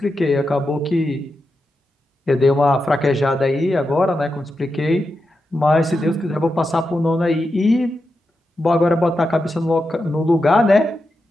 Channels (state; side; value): normal; both; correlation 0.88